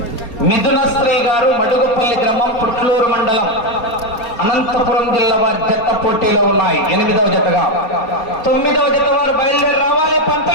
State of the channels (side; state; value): right; late; 4.3 ms